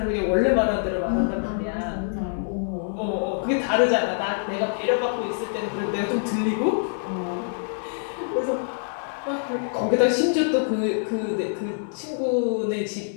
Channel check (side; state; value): right; silent; digital silence